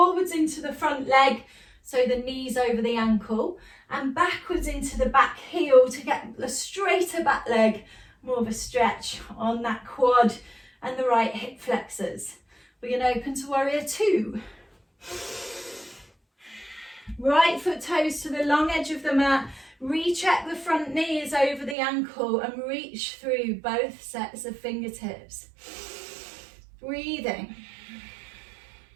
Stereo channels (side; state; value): left; drops out; at 21.8 s